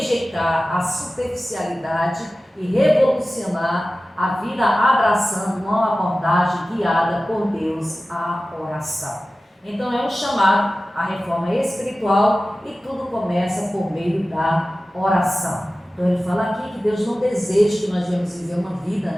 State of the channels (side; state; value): both; normal; correlation 0.96